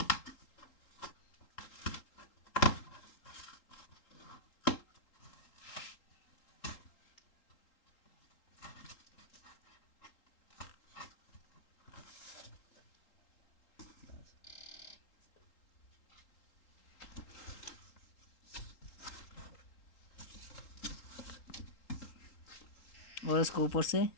और इसको ऊपर से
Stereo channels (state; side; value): late; right; 3.8 ms